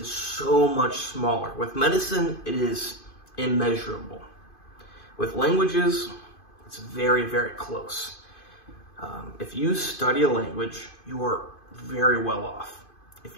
so much smaller. With medicine, it is immeasurable. With languages, it's very, very close. If you study a language, you are very well off. If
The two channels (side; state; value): right; late; 2.5 ms